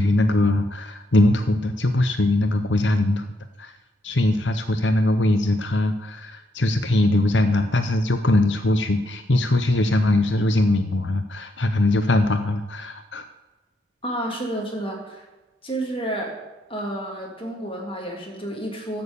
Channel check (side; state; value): both; normal; correlation 0.78